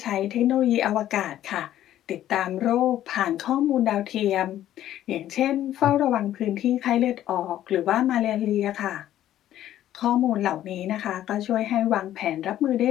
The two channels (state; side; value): quieter; right; 12.4 dB